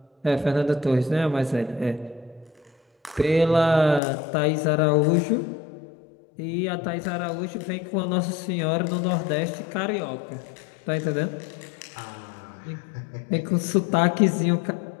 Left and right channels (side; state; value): right; drops out; at 4.0 s